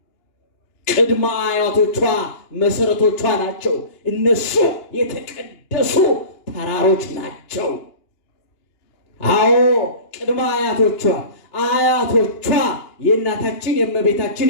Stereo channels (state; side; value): late; right; 2.9 ms